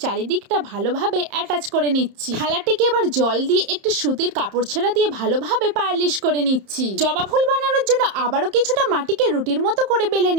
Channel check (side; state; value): left; late; 31 ms